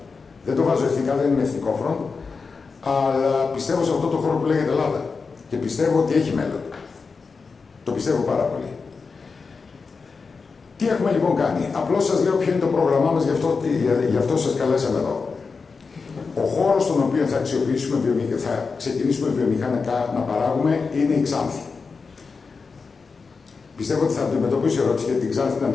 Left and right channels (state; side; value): quieter; right; 4.8 dB